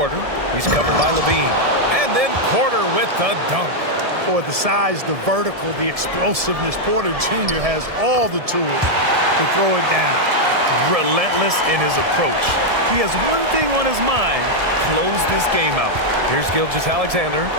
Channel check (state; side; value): late; left; 1.7 ms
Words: He's covered by LaVine. And And then Porter with the dunk. Boy, the size, the vertical, the explosiveness, Porter Jr. has all the tools to throw it down. Relentless in his approach. He has one thing on his mind: close this game out. Here's Gilgeous-Alexander.